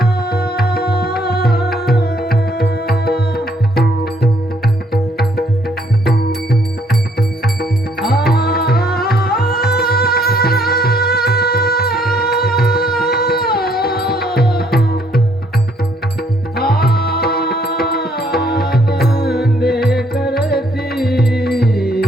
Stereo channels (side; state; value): both; normal; correlation 0.66